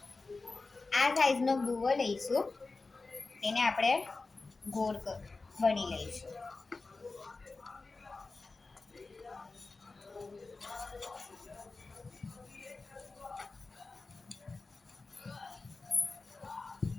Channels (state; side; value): quieter; right; 3.8 dB